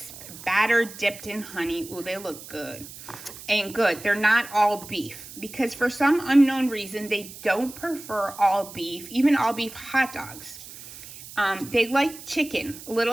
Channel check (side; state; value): right; noise; hiss, 15 dB below the sound